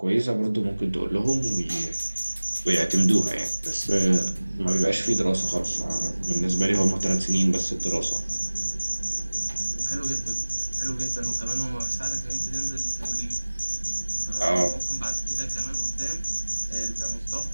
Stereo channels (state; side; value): inverted; both; correlation -1.00